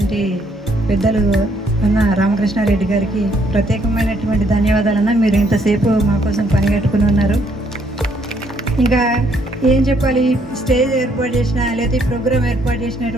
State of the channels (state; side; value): normal; both; correlation 0.69